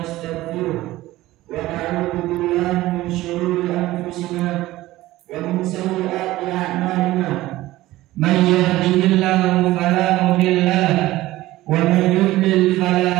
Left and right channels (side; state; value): left; quieter; 16.9 dB